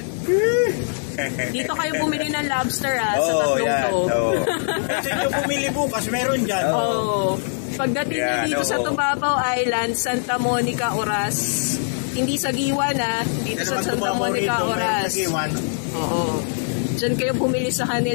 Dito kayo bumili ng lobster sa tatlong to. Kasi yung bumili bukas, meron dyan. Pagdating nyo dito sa Tubabaw Island, Santa Monica, Oras. Hindi sa Giwan dito sa Santa Monica, Oras. Oo. Diyan kayo bumili sa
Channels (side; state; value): right; silent; 64 dB below the other